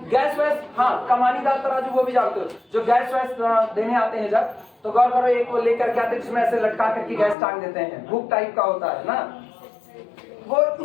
गैस वैस, हाँ कमानीदार तराजू वो भी जानते हो, जो गैस वैस देने आते हैं जब, तो गौर करो एक वो लेकर के आते हैं जिसमें ऐसे लटका करके गैस टांग देते हैं, हुक टाइप का होता है ना, वो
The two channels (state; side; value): drops out; right; at 7.4 s